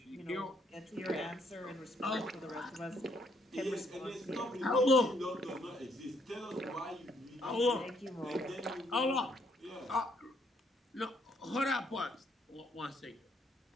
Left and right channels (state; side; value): normal; both; correlation 0.70